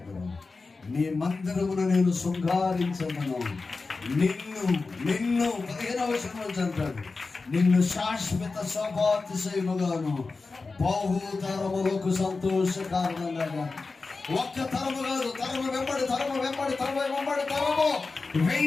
నీ మందిరమును నేను శృంగారించదను, నిన్ను 15వ వచనం అంటాడు, నిన్ను శాశ్వత శోభాతిశయముగాను బహుతరములకు సంతోష కారణంగా. ఒక్క తరము కాదు, తరము వెంబడి తరము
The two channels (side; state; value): right; quieter; 4.0 dB